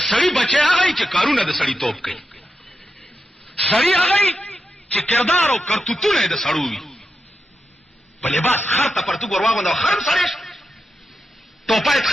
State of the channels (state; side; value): normal; both; correlation 0.88